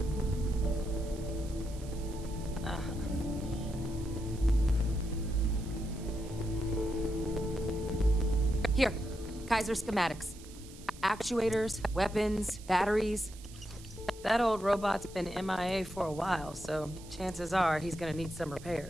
Here, Kaiser schematics. Actuators, weapons, batteries. That old robot's been MIA for a while, so chances are he's gonna need some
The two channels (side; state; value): right; noise; hiss, 19 dB below the sound